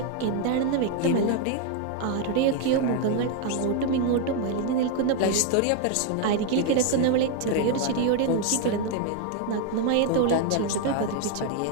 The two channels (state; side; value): different; both; correlation 0.01